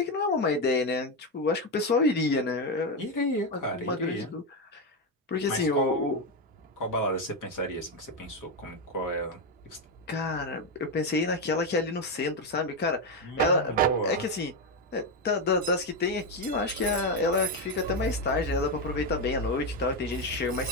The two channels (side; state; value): both; normal; correlation 0.08